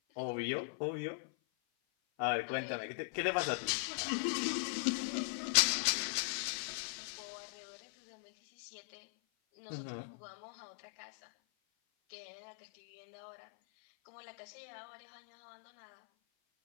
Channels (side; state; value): right; silent; 51 dB below the other